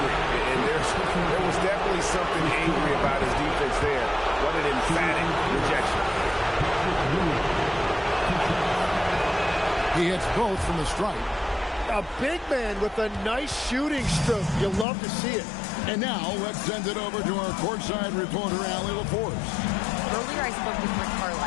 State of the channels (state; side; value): drops out; right; at 14.9 s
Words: And there was definitely something angry about his defense there. What an emphatic rejection. He hits both from the stripe. A big man with a nice shooting stroke. You'll love to see it. And now let's send it over to our courtside reporter, Allie LaForce. Earlier I spoke with Rick